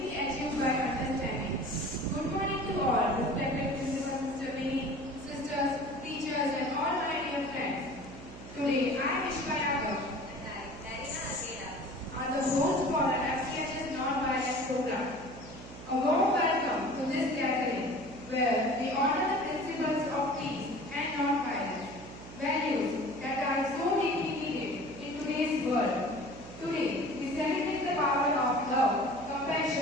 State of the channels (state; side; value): noise; right; hum, 14 dB below the sound